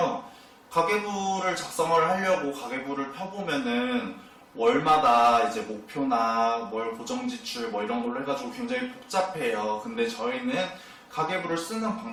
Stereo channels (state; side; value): identical; both; correlation 1.00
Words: 가계부를 작성을 하려고 가계부를 펴보면은 월마다 이제 목표나 월 고정지출 뭐 이런 걸로 해가지고 굉장히 복잡해요. 근데 저희는 가계부를 쓰는